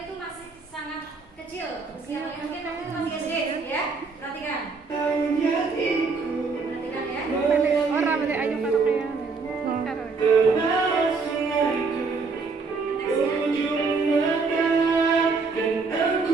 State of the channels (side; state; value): left; quieter; 4.5 dB